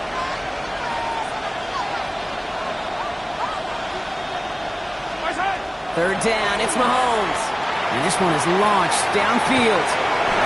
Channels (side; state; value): both; identical; correlation 1.00